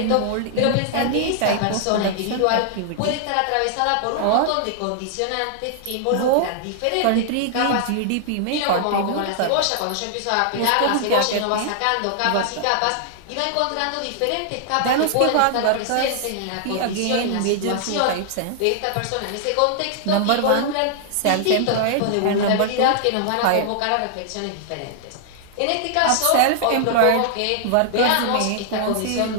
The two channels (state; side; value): different; both; correlation -0.01